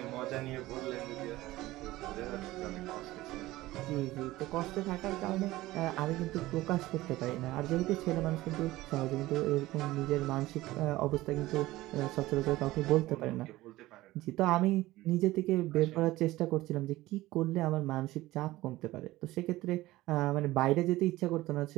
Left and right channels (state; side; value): quieter; left; 17.5 dB